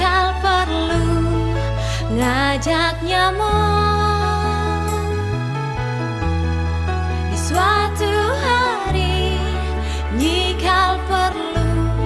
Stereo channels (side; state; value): both; identical; correlation 1.00